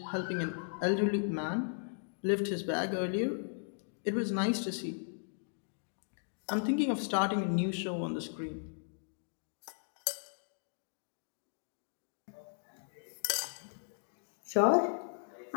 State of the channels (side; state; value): right; silent; digital silence